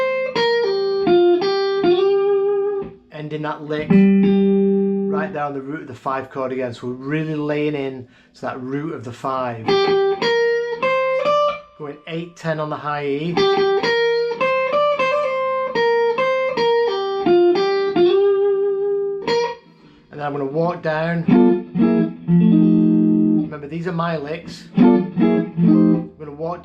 Ending that lick right there on the root of the 5 chord again, so we're really laying in to that root of the 5. Going 8-10 on the high E. And then I'm going to walk down. Remember, these are my licks. I'm going to walk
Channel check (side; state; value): both; identical; correlation 1.00